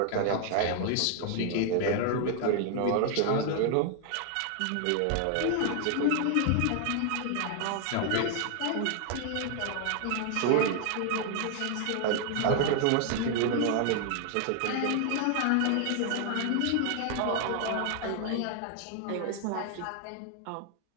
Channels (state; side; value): different; both; correlation 0.00